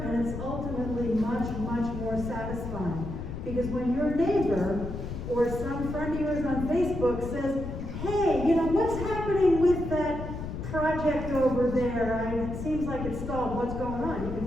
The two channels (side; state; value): left; noise; rumble, 6 dB below the sound